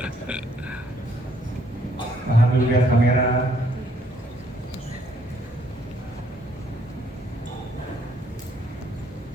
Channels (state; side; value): normal; both; correlation 0.67